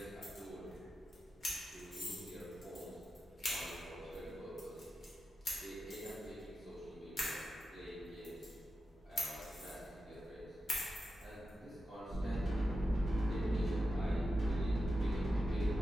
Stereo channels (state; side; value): normal; both; correlation 0.91